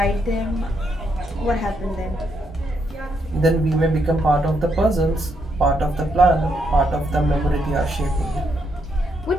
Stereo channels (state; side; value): normal; both; correlation 0.77